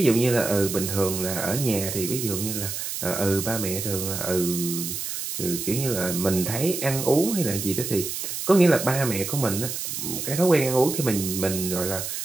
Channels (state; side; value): noise; right; hiss, 5 dB below the sound